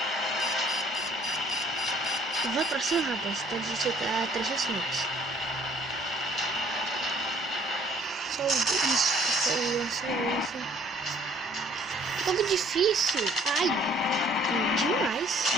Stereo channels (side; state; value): both; normal; correlation 0.60